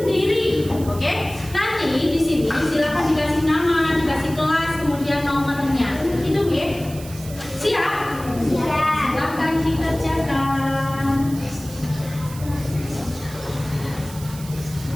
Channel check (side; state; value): right; noise; hiss, 16 dB below the sound